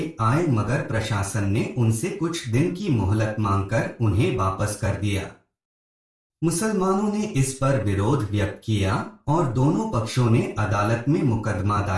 आए, मगर प्रशासन ने उनसे कुछ दिन की मोहलत मांगकर उन्हें वापस कर दिया। मुसलमानों ने इस पर विरोध व्यक्त किया और दोनों पक्षों ने अदालत में मुकदमा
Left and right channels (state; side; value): identical; both; correlation 1.00